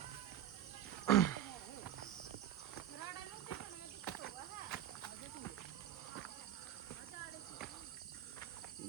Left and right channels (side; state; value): left; quieter; 11.2 dB